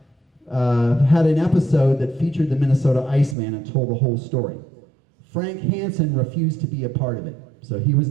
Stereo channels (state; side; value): drops out; left; at 3.4 s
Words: had an episode that featured the Minnesota Iceman and told the whole story. Frank Hansen refused to be a part of it, so he was